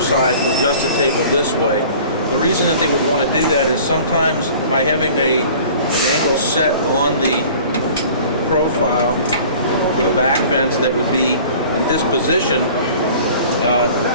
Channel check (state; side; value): inverted; both; correlation -0.46